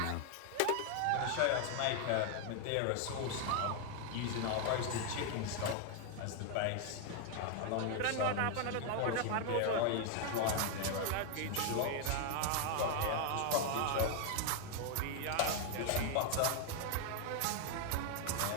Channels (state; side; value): different; both; correlation 0.01